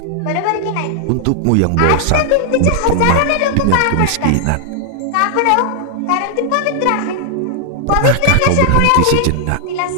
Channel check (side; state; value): both; different; correlation 0.00